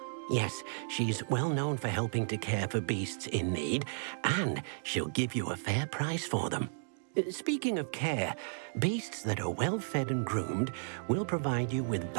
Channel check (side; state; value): left; silent; digital silence